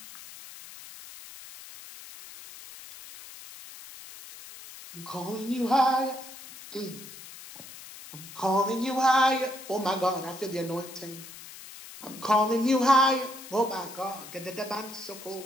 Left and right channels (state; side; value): noise; left; hiss, 15 dB below the sound